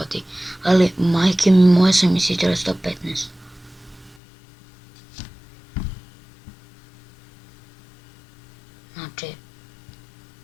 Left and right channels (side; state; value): right; drops out; at 4.2 s